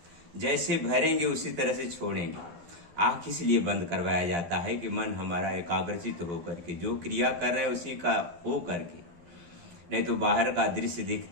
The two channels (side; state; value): left; late; 12 ms